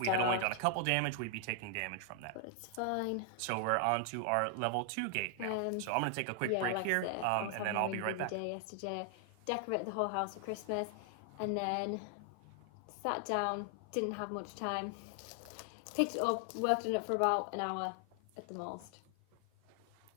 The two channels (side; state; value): both; different; correlation 0.00